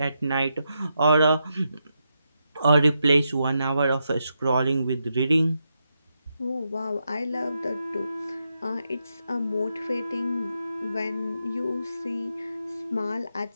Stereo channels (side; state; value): both; inverted; correlation -0.83